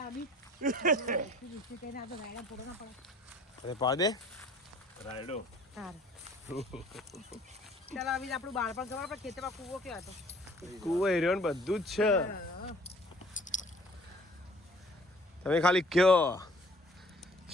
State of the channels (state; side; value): normal; both; correlation 0.53